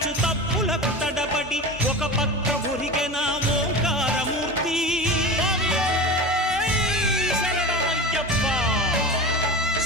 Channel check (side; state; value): both; normal; correlation 0.29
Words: తప్పులకు తడబడి ఒక పక్క ఒరిగెన ఓంకారమూర్తి